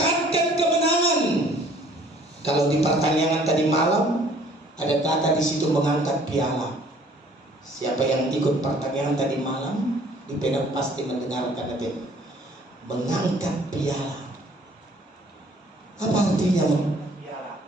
kemenangan. Kalau di pertandingan tadi malam ada kata di situ mengangkat piala. Siapa yang ikut pertandingan tadi malam di Penang pasti mendengarkan itu, mengangkat piala. Apa artinya,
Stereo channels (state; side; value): normal; both; correlation 0.56